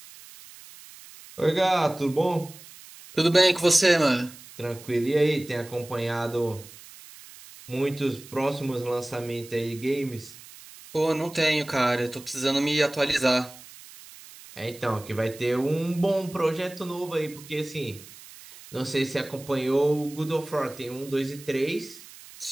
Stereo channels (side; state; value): right; noise; hiss, 19 dB below the sound